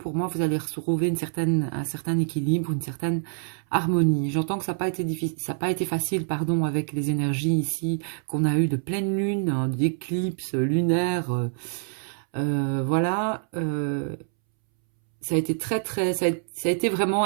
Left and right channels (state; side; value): silent; left; 61 dB below the other